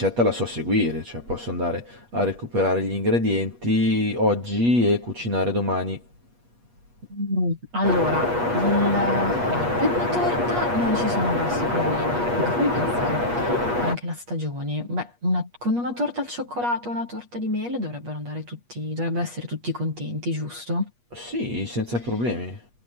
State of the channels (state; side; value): late; left; 8.3 ms